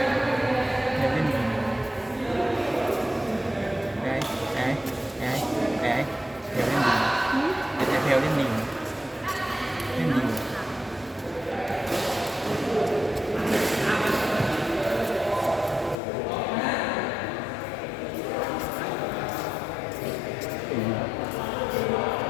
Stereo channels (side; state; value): right; drops out; at 16.0 s